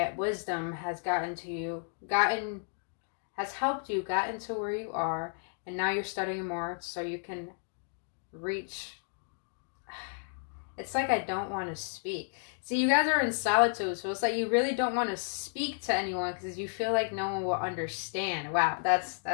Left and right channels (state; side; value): silent; right; digital silence